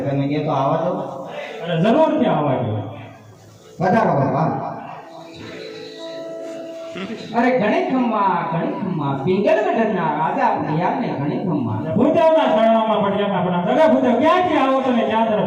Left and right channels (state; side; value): identical; both; correlation 1.00